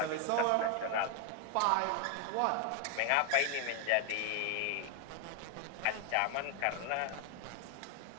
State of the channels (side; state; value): both; different; correlation 0.01